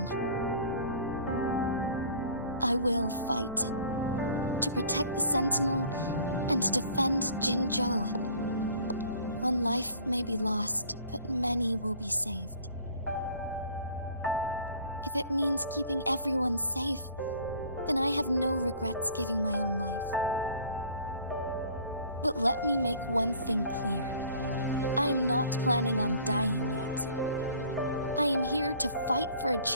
I will fight to protect the Sentinel and to defend Jinzhou. One life may be lost, but many will be saved. If it means keeping everyone safe, then I have no regrets giving my own life. But let me make one thing clear. I am not planning on dying yet. I am here to fight for a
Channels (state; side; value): inverted; both; correlation -0.50